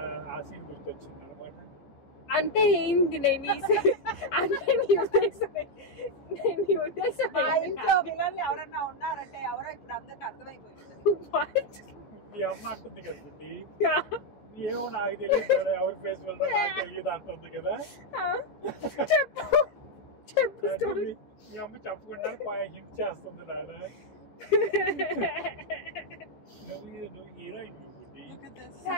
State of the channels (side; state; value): right; late; 14 ms